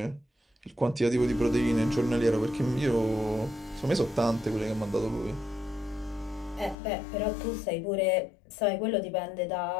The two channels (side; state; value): right; drops out; at 6.8 s